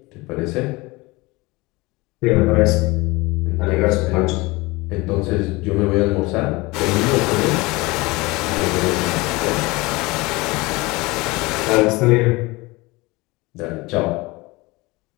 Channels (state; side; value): quieter; right; 23.1 dB